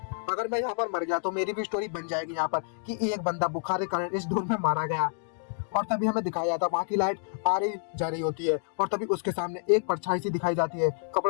अगर मैं यहाँ पर मर गया तो मेरी भी स्टोरी बन जाएगी यहाँ पर कि एक बंदा बुखार के कारण इस डोम में मारा गया। और तभी हमें दिखाया जाता है वहाँ की लाइट आ रही जा रही होती है और तभी उसके सामने एक परछाई सी दिखाई जाती है,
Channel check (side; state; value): right; silent; digital silence